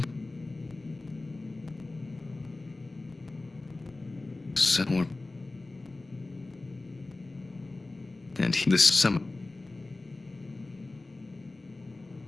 Set more. And this summer.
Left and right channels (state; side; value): quieter; right; 3.1 dB